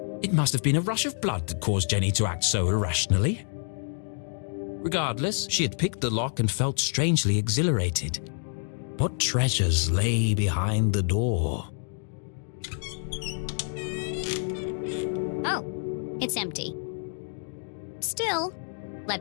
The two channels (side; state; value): right; silent; digital silence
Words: It must have been a rush of blood that caused Jenny to act so irrationally. Regardless, she had picked the lock and felt strangely exhilarated. What treasures lay behind the door? Oh, it's empty. Still,